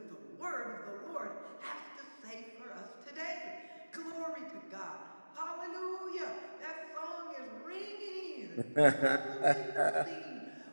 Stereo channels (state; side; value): inverted; both; correlation -1.00